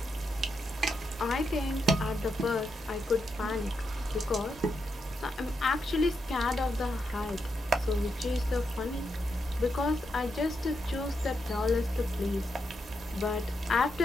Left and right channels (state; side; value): normal; both; correlation 0.83